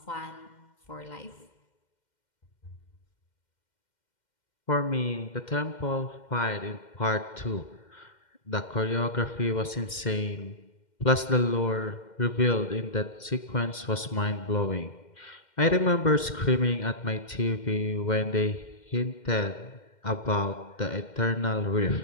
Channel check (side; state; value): right; late; 2.1 ms